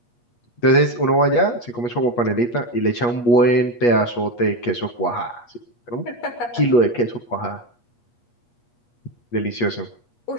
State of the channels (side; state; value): right; late; 8.3 ms